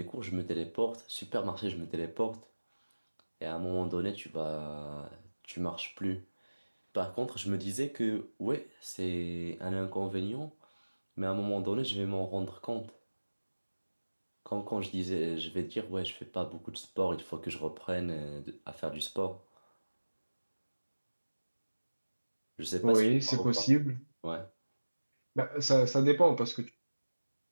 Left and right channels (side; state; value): both; inverted; correlation -1.00